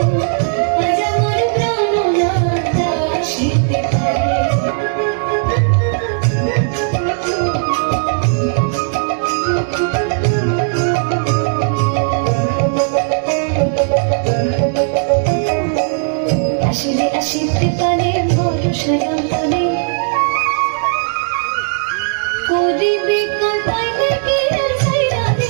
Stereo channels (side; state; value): left; silent; digital silence